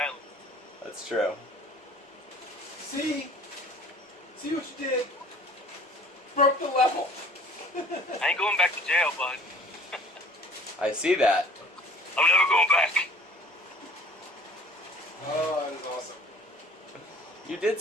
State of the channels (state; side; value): normal; both; correlation 0.49